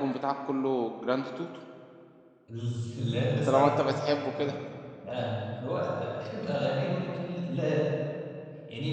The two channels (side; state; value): both; identical; correlation 1.00